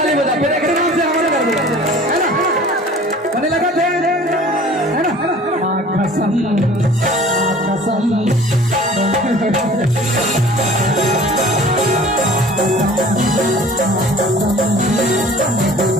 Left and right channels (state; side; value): normal; both; correlation 0.47